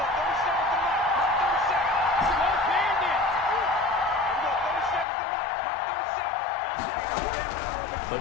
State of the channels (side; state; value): right; drops out; at 5.1 s